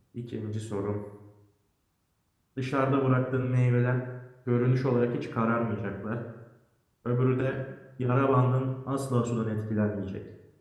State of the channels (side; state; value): both; identical; correlation 1.00